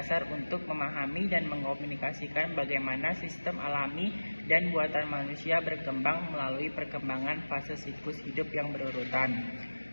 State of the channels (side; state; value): both; inverted; correlation -1.00